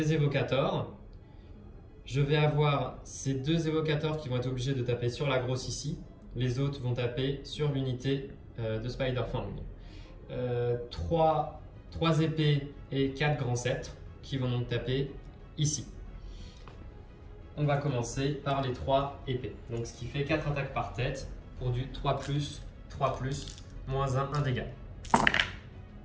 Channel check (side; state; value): both; identical; correlation 1.00